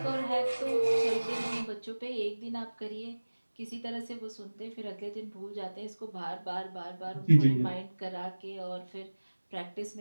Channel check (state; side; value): inverted; both; correlation -1.00